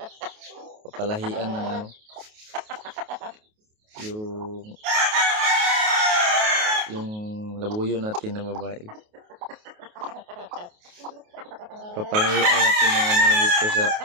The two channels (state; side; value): late; left; 28 ms